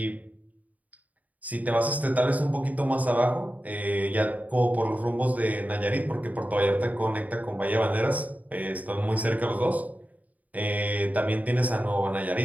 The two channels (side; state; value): left; late; 0.074 ms